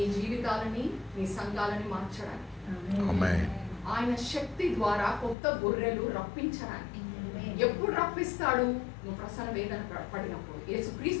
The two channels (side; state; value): right; drops out; at 5.4 s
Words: జీవితాలని, మీ సంఘాలని మార్చడానికి, ఆయన శక్తి ద్వారా కొత్త గొర్రెలు రప్పించడానికి. ఎప్పుడు రప్పిస్తాడు? నువ్వు ప్రసన్న వేదన పడినప్పుడు.